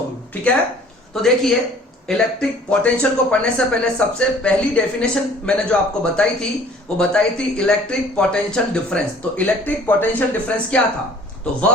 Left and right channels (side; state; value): both; normal; correlation 0.52